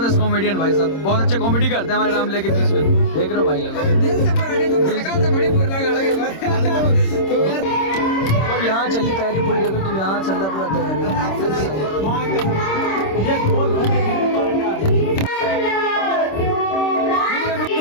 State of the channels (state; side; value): late; right; 26 ms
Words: कॉमेडियन भाई साहब, बहुत अच्छे कॉमेडी करते हैं हमारे रामले के बीच में। देख रहे हो भाई लोग, दिल से बड़ी यहाँ चल रही तैयारी पूरी। देखो तुम, यहाँ चल रहा पूरा तैयारी।